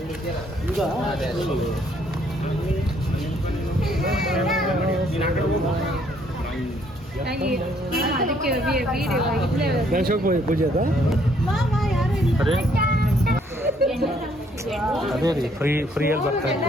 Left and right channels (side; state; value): both; normal; correlation 0.67